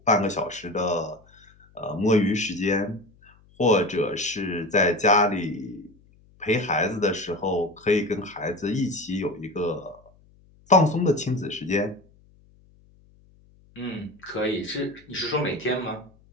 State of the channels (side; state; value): left; noise; hum, 29 dB below the sound